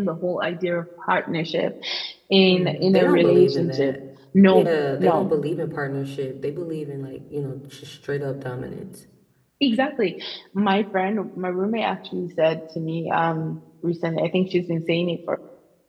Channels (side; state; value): both; identical; correlation 1.00